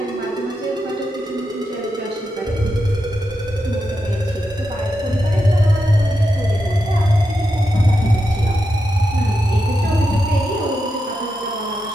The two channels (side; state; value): both; normal; correlation 0.87